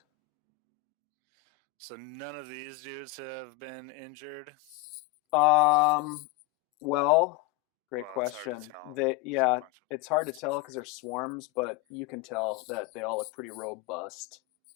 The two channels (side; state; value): right; quieter; 17.8 dB